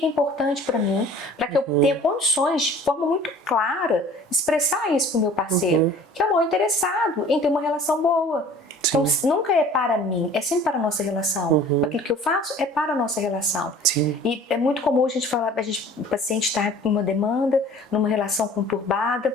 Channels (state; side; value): normal; both; correlation 0.47